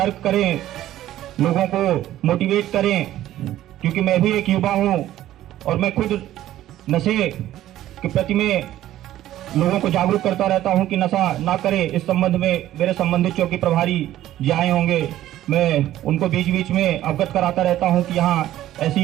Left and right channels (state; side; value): quieter; left; 13.5 dB